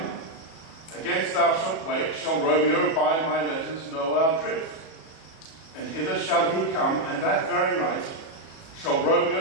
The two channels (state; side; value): late; right; 37 ms